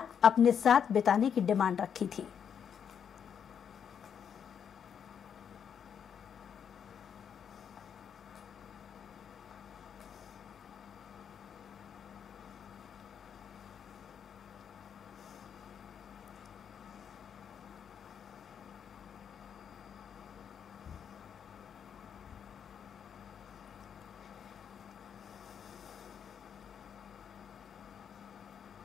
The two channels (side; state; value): right; quieter; 7.8 dB